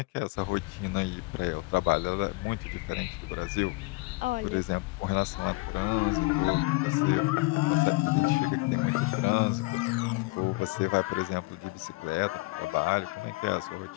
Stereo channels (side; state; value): right; quieter; 24.6 dB